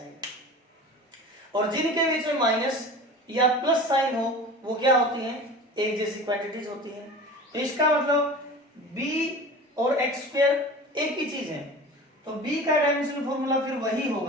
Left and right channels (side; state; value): both; normal; correlation 0.36